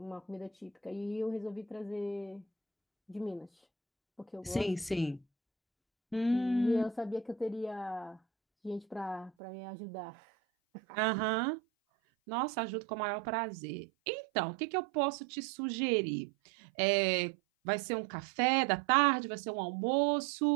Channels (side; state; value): left; drops out; at 9.3 s